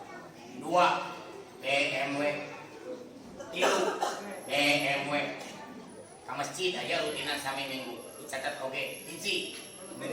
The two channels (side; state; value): both; identical; correlation 1.00